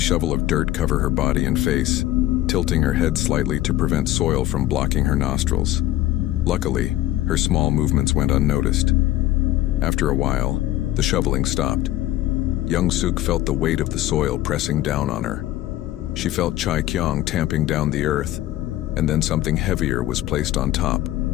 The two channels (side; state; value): right; quieter; 14.8 dB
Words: of dirt cover her body and face, tilting her head slightly to prevent soil from blocking her nostrils. Luckily, her small movements went unnoticed. After a while, the shoveling stopped. Young Sook felt the weight of the soil pressing down on her. She felt Chai Kyung tamping down the earth, and then something heavier was placed on top.